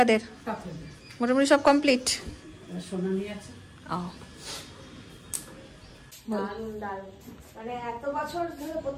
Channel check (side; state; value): both; identical; correlation 1.00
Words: মোটামুটি সব কমপ্লিট। সোনা নিয়ে আছে। দারুণ দারুণ, মানে এত বছর ধরে